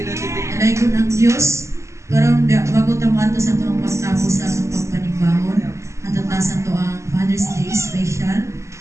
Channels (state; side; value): late; left; 0.14 ms